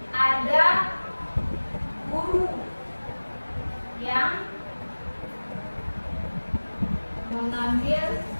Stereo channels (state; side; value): inverted; both; correlation -1.00